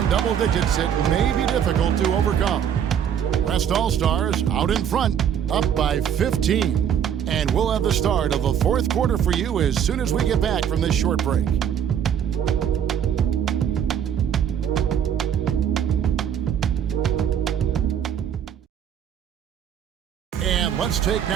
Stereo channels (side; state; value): left; quieter; 8.9 dB